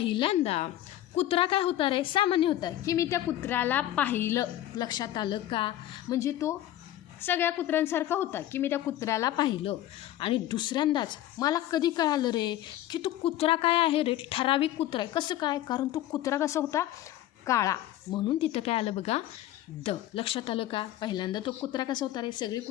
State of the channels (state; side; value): quieter; right; 13.6 dB